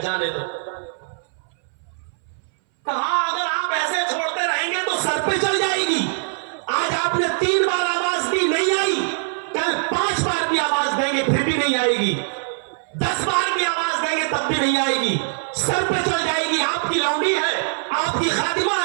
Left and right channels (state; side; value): silent; left; 60 dB below the other